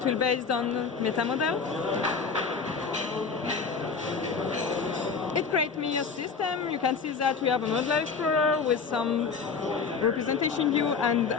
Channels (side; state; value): right; quieter; 5.3 dB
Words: will be based on meta model. It creates me a system. You can see that we have a modular explorer with some representation view and